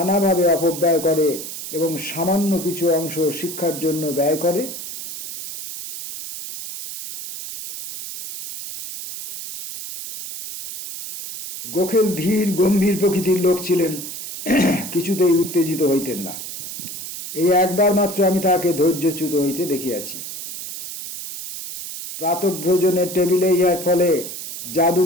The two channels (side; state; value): right; noise; hiss, 9 dB below the sound